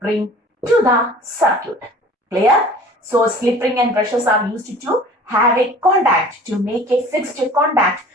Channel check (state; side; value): normal; both; correlation 0.46